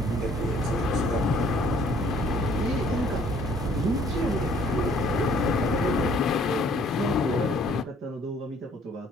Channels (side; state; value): both; normal; correlation 0.60